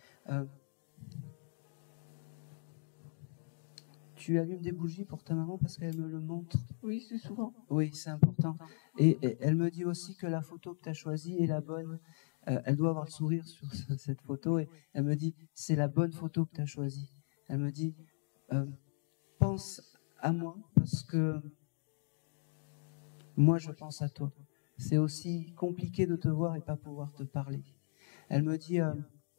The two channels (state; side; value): silent; right; 53 dB below the other